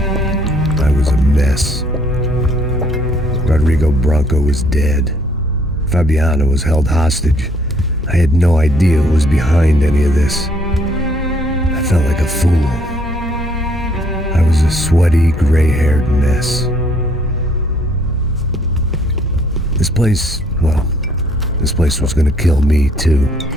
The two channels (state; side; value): normal; both; correlation 0.65